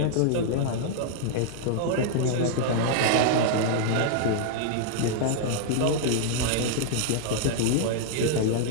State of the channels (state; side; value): different; both; correlation -0.01